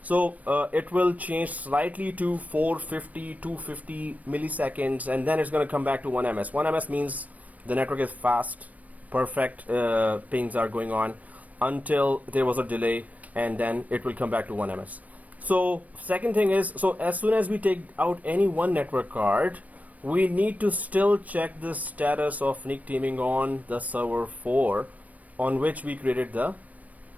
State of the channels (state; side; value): late; left; 0.071 ms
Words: so it will change slightly to 450, 250 milliseconds, and then it's going to come back to 1 MS. 1 MS means the network is fast, perfect pings are going on until there was a delay, and then it will come back to 1 MS. So second thing is, so as soon as we take out any one network card, we need to still check the status of NIC teaming on the server 4 on which we created